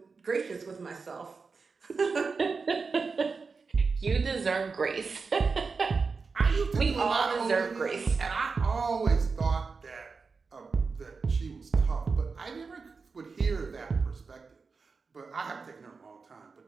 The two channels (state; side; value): quieter; left; 4.7 dB